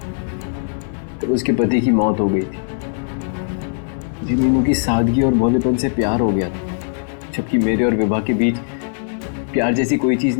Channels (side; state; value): right; silent; digital silence